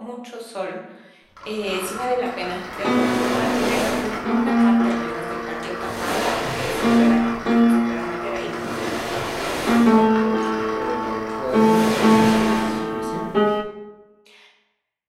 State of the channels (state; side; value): identical; both; correlation 1.00